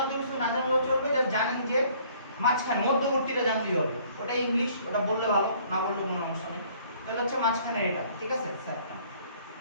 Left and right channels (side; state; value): both; inverted; correlation -0.58